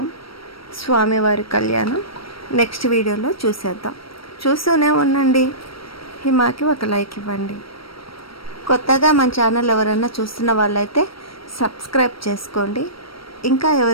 స్వామివారి కళ్యాణం నెక్స్ట్ వీడియోలో చూసేద్దాం. చూస్తూనే ఉండండి. హిమాకి ఒక లైక్ ఇవ్వండి. కొత్తగా మన ఛానల్ ఎవరైనా చూస్తున్న వాళ్ళైతే సబ్స్క్రైబ్ చేసుకోండి. ఇంకా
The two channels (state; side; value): late; right; 0.75 ms